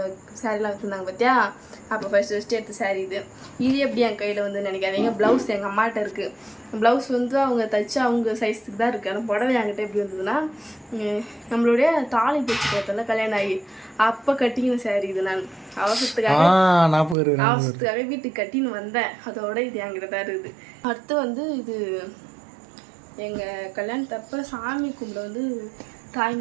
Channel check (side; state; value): left; drops out; at 17.2 s